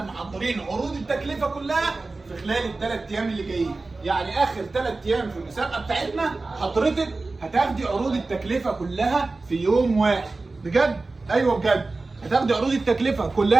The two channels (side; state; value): left; quieter; 3.5 dB